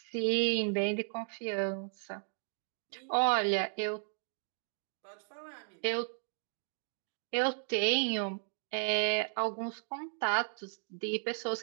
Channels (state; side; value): silent; left; digital silence